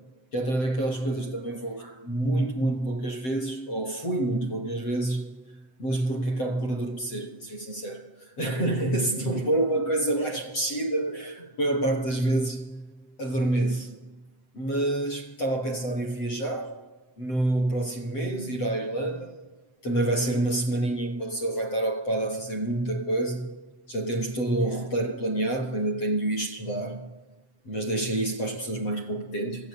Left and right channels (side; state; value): right; late; 7.8 ms